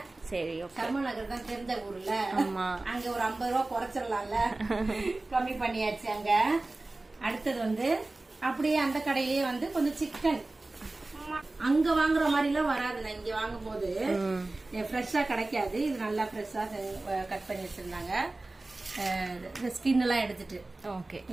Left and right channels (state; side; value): quieter; left; 3.0 dB